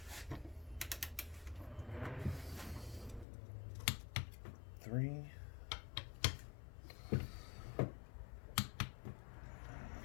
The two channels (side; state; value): right; drops out; at 3.2 s